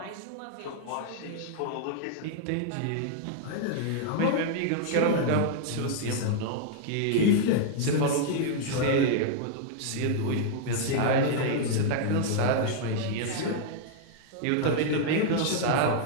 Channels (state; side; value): different; both; correlation -0.01